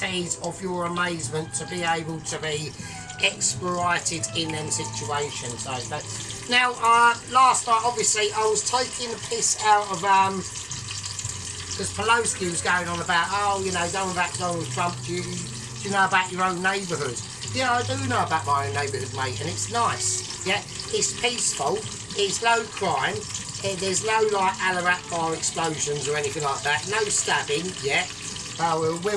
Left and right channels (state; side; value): identical; both; correlation 1.00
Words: of your amazement to be able to be exploited in them situations, okay? Now, last night, obviously, I was taking the piss out of, because Pelosi was going on about, oh, you know, don't about Donald Trump, do you know about your own neighbourhood? Yeah, I do know about my own neighbourhood, mate, and it's nice, yeah? It's peaceful. It's low crime, there's no like Alarat bar explosions or anything like that, no stabbing yet.